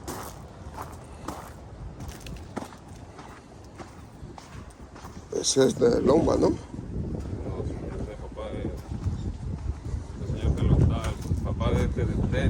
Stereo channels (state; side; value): identical; both; correlation 1.00